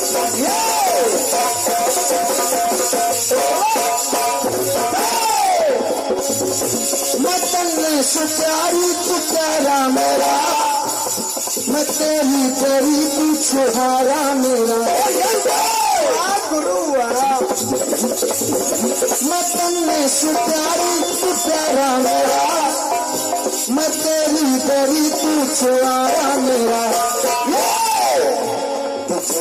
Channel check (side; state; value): both; identical; correlation 1.00